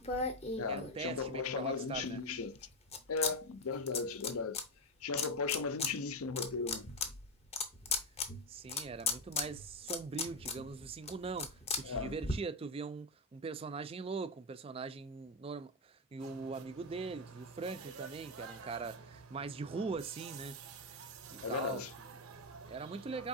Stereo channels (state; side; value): normal; both; correlation 0.07